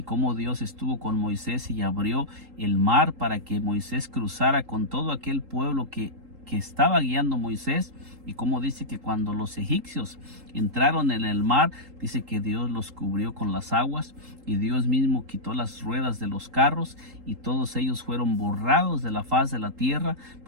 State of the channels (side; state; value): left; late; 3.8 ms